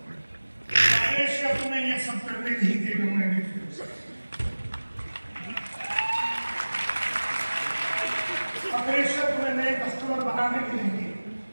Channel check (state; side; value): inverted; both; correlation -1.00